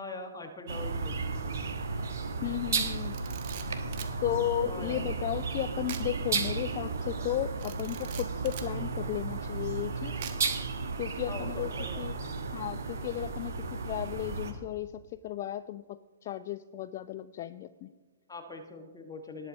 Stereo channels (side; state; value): both; inverted; correlation -0.40